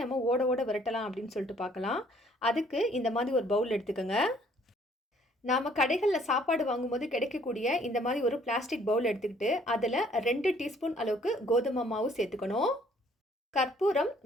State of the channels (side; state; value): both; normal; correlation 0.60